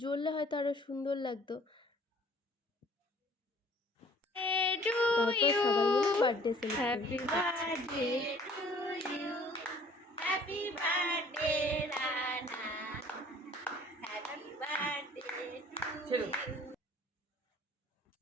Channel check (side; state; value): both; normal; correlation 0.54